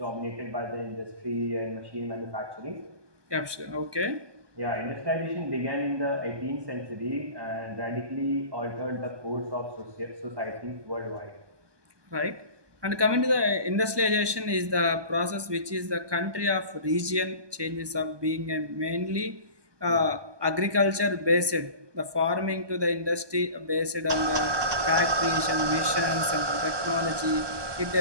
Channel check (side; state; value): left; late; 1.2 ms